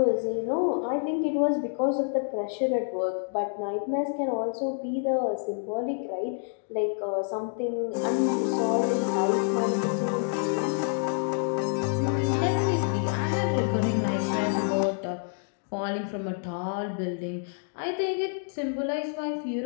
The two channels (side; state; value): right; silent; 59 dB below the other